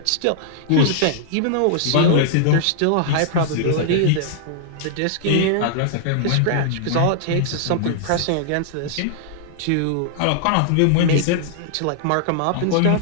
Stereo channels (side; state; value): both; different; correlation -0.01